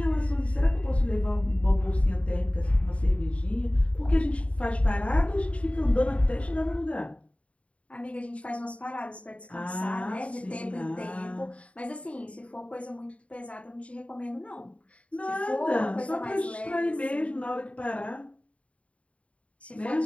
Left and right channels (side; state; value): right; late; 0.064 ms